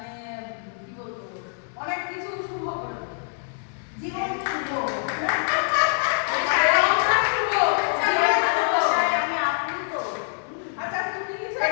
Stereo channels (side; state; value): right; silent; 62 dB below the other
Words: কি বলবো অনেক কিছু শুভ করে দেবে। জীবন শুভ,